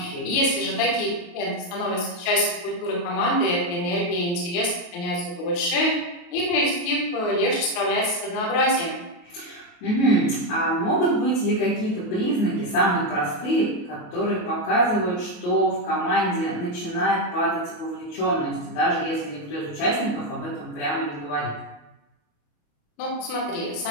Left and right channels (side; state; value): right; late; 29 ms